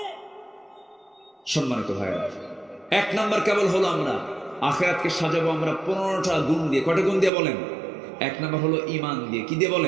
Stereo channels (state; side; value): drops out; left; at 7.3 s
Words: সম্মানিত ভাইরা, এক নাম্বার কেবল হলো আমরা আখিরাতকে সাজাবো আমরা 15টা গুণ দিয়ে। কয়টা গুণ দিয়ে বলেন? এক নাম্বার হলো ঈমান দিয়ে। কি দিয়ে